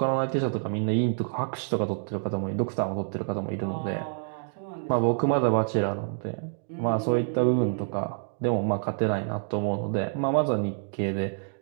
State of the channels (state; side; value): silent; left; digital silence